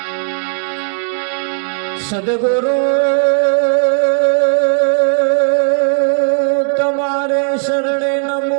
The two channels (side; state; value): left; silent; digital silence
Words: સદગુરુ તમારે શરણે